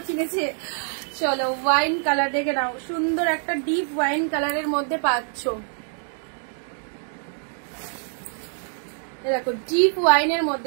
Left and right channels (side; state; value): left; silent; 62 dB below the other